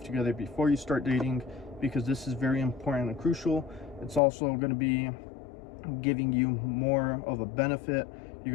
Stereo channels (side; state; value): right; drops out; at 4.2 s